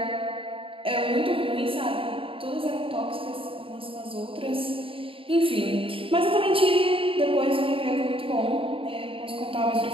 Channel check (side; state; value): left; late; 0.26 ms